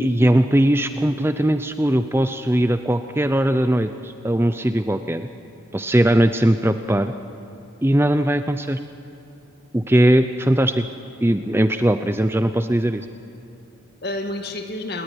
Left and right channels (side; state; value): both; normal; correlation 0.90